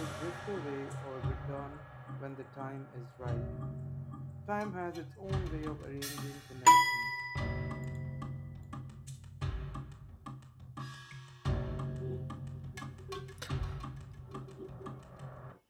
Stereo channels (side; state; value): both; identical; correlation 1.00